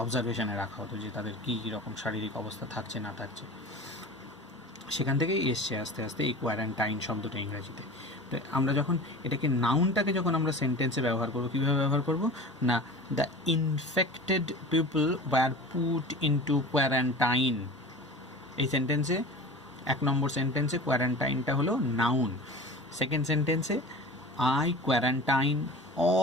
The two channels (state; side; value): normal; both; correlation 0.36